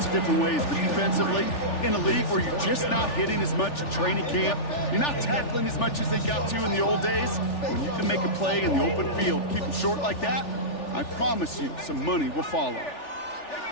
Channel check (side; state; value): right; late; 3.4 ms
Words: of different ways, but defensively, in a league where you're just not hitting as much at training camp, you're not tackling as much as they got to in the old days, when you can make a play in the open field, keep them short like that, I promise you some money will follow. Here